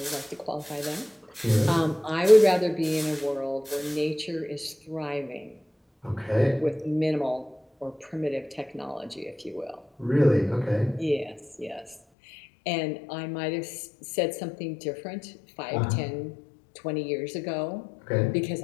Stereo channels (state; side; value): drops out; right; at 12.0 s